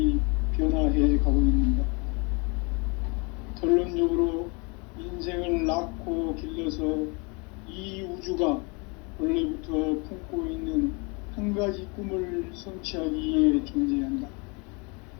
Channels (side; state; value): right; quieter; 31.0 dB